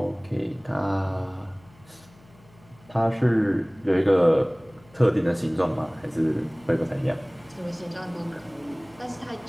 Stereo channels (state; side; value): noise; left; hum, 27 dB below the sound